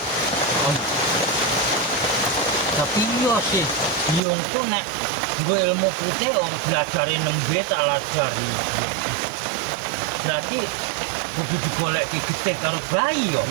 Tapi yo sih, nyongko nek nggo ilmu putih om belajari nembe tak lajari. Berarti kudu digoleki getih karo bayi yo.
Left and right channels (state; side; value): drops out; left; at 4.2 s